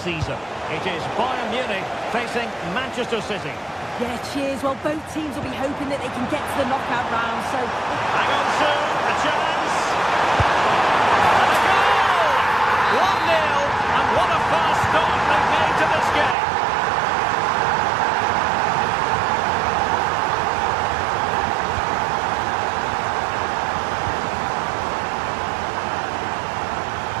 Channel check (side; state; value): left; drops out; at 16.4 s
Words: It is Bayern Munich facing Manchester City. Yeah, cheers. Well, both teams will be hoping that they can get to the knockout round, so... Hang on, Sue, a chance! And a goal! 1-0, and what a fast start they've made to this game.